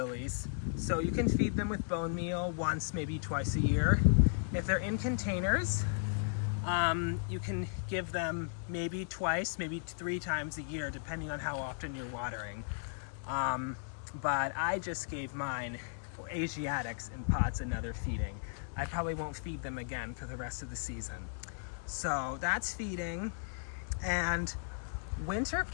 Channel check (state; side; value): silent; right; digital silence